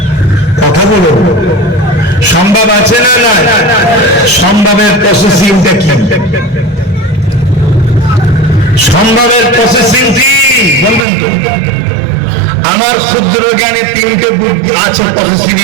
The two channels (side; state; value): left; drops out; at 11.1 s